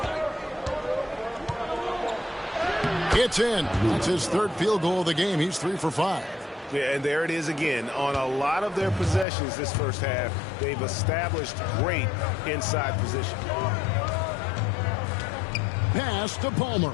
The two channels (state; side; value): drops out; right; at 9.2 s